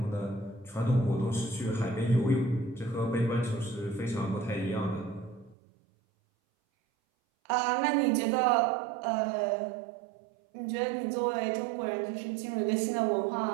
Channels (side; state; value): left; drops out; at 5.6 s